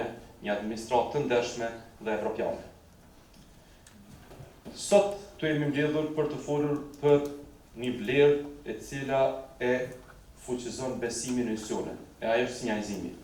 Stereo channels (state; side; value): identical; both; correlation 1.00